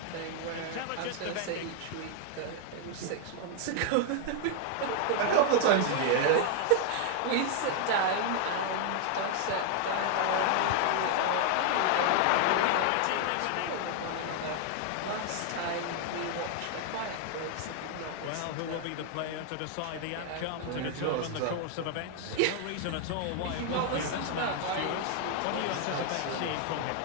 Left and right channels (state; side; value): different; both; correlation 0.00